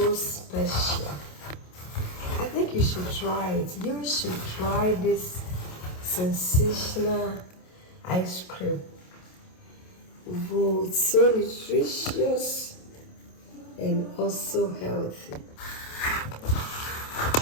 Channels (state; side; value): late; right; 27 ms